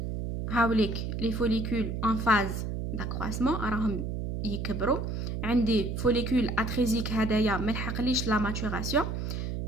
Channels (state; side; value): noise; right; hum, 3 dB below the sound